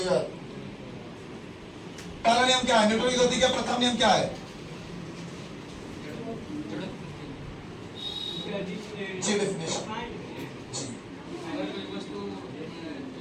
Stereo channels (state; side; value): identical; both; correlation 1.00